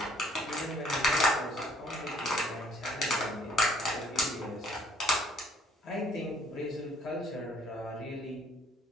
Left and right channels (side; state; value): both; normal; correlation 0.60